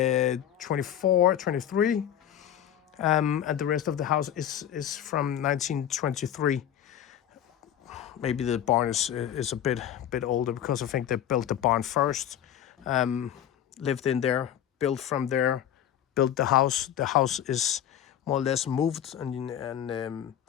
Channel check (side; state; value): right; quieter; 10.4 dB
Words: 23, and the rest of the house is from 1923. Maybe the barn is a bit older because I think they built the barn first, lived in there, built from there, built the house. The house is more or less moved and